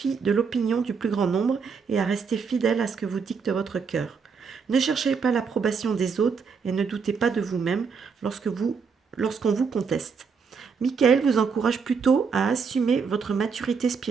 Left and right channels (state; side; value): quieter; left; 5.7 dB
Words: de l'opinion du plus grand nombre et à rester fidèle à ce que vous dicte votre cœur. Ne cherchez pas l'approbation des autres et ne doutez pas de vous-même lorsqu'on vous conteste. Michael vous encourage plutôt à assumer votre maturité